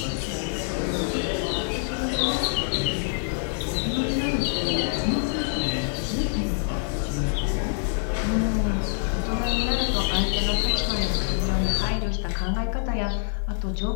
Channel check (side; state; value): right; silent; 55 dB below the other